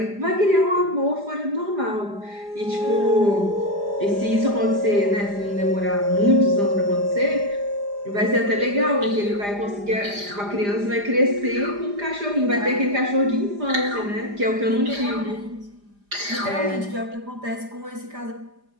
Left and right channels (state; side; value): late; left; 4.9 ms